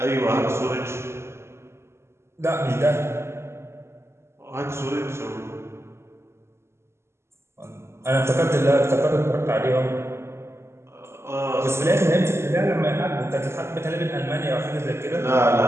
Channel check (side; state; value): left; late; 0.13 ms